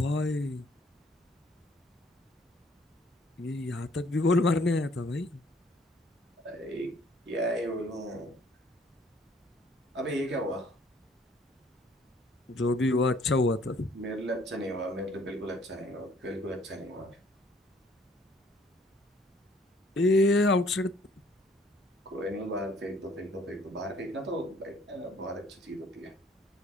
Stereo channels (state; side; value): normal; both; correlation 0.60